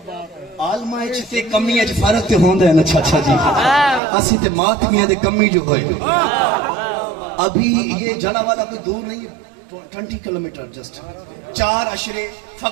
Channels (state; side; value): drops out; left; at 4.0 s